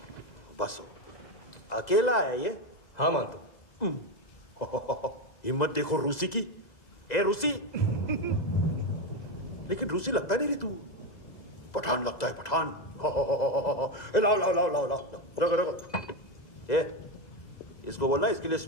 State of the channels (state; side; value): late; right; 2.0 ms